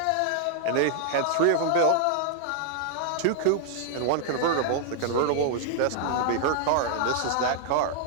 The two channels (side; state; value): both; different; correlation -0.01